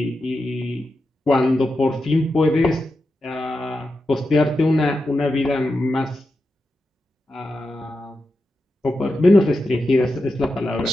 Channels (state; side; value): normal; both; correlation 0.89